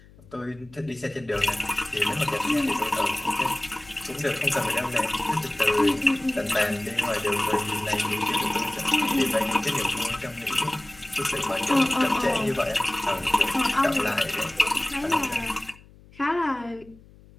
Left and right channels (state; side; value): noise; left; hum, 24 dB below the sound